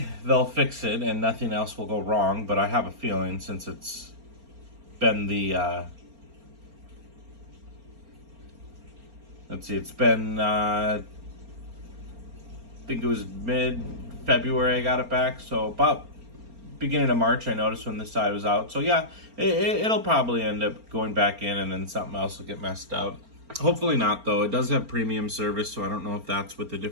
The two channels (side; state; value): left; late; 4.3 ms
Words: they'll fix it and nothing else will go wrong. But I have a feeling, since it's been it's been, I think it was mid-February I got it back, so about beginning of March I noticed when this side was out. So yeah, it'll probably end up going back in and then something else will get messed up. Hopefully not, though. It does have premium service, so I don't know if that's with a